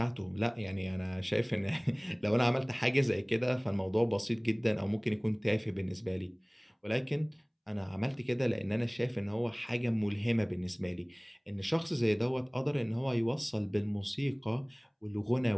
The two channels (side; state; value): both; identical; correlation 1.00